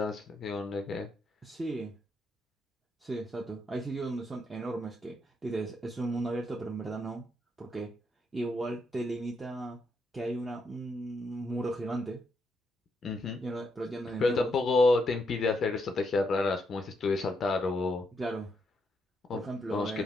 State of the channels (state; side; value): normal; both; correlation 0.79